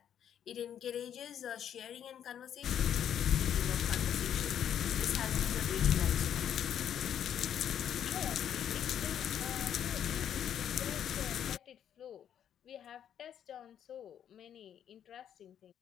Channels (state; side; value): quieter; right; 9.5 dB